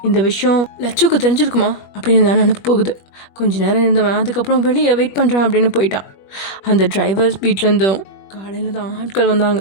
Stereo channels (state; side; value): late; right; 21 ms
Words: இந்த விஷயம் லட்சுக்கு தெரிஞ்சிருக்குமா அப்படின்னு தான் நினப்பு போகுது. கொஞ்ச நேரம் இருந்தவன் அதுக்கப்புறம் வெளியே வெயிட் பண்ணுறான் அப்படின்னு போயிட்டான். அந்த டிரைவர் வீட்டிலேருந்தும் காலையில் தான் ஆட்கள் வந்தாங்க.